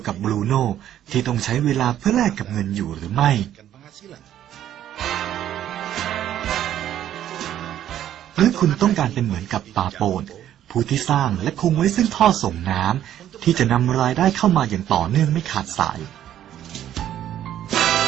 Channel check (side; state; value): left; quieter; 11.3 dB